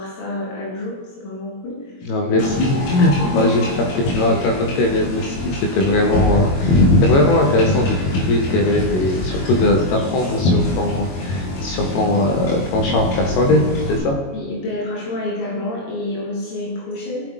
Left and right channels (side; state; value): right; late; 22 ms